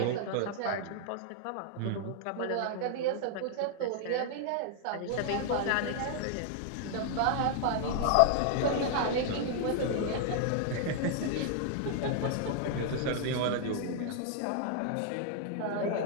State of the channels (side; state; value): both; different; correlation 0.00